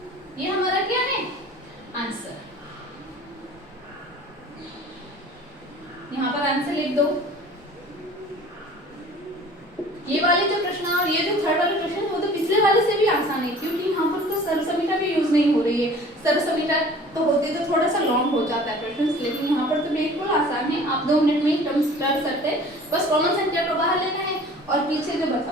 ये हमारा क्या है आंसर। यहाँ पर आंसर लिख दो। ये वाले जो प्रश्न और ये जो थर्ड वाले प्रश्न वो तो पिछले वाले से भी आसान आसान है क्योंकि यहाँ पर तो सर्वसमीटा भी यूज नहीं हो रही है। सर्वसमीटा तो होती तो थोड़ा सा लॉन्ग हो जाता है क्वेश्चन, लेकिन यहाँ पर तो बिल्कुल आसान है, आप 2 मिनट में ही टर्म्स कर सकते हैं। बस कॉमन संख्या को बाहर लेना है और पीछे जो बचा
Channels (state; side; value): normal; both; correlation 0.46